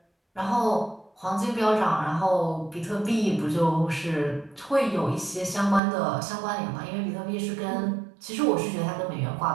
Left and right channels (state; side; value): drops out; left; at 5.8 s